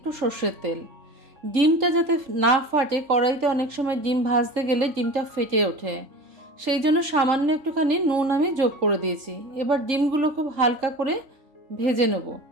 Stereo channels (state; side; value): late; left; 3.8 ms